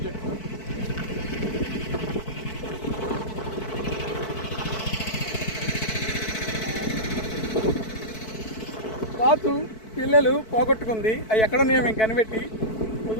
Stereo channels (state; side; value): late; right; 4.6 ms